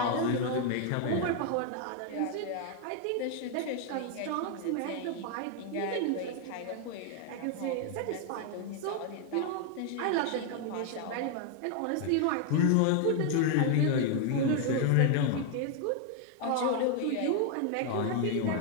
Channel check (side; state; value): both; different; correlation 0.00